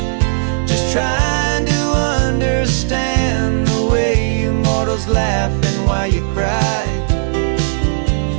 just trying to understand the way you mortals laugh and why you cry.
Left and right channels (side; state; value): left; silent; digital silence